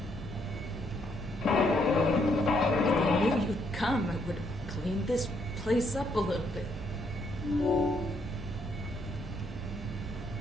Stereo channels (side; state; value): both; normal; correlation 0.72